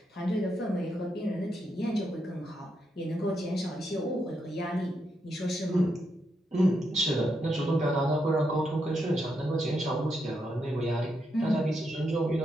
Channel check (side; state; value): both; normal; correlation 0.81